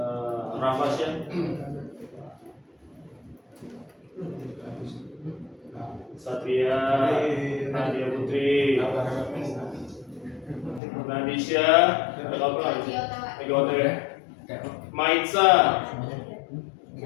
Rafasya, Satria, Nadia Putri, Nadisha, ada apa? Ego ya. Maitza,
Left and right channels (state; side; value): drops out; right; at 10.8 s